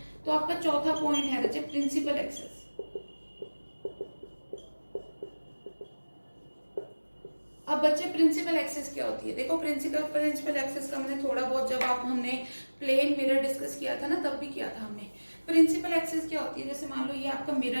तो आपका चौथा पॉइंट है बच्चे प्रिंसिपल एक्सिस। अब बच्चे प्रिंसिपल एक्सिस क्या होती है, देखो प्रिंसिपल एक्सिस का मैंने थोड़ा बहुत जब हमने प्लेन मिरर डिस्कस किया था ना, तब भी किया था हमने। प्रिंसिपल एक्सिस क्या होती है, जैसे मान लो ये आपका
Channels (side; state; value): both; inverted; correlation -1.00